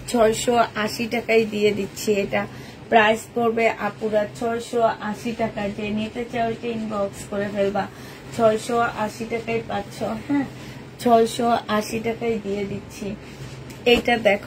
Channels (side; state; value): both; identical; correlation 1.00